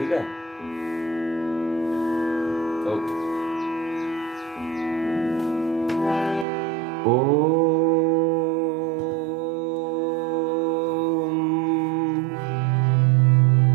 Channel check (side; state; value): left; drops out; at 6.5 s